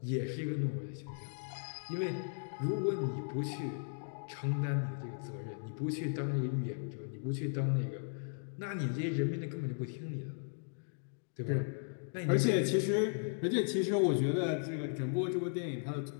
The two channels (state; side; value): silent; right; digital silence